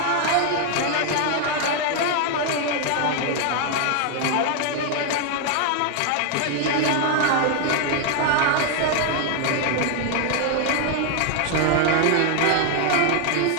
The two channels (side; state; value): both; different; correlation 0.00